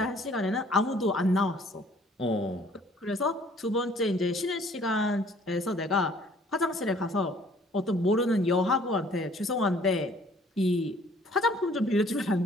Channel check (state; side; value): normal; both; correlation 0.57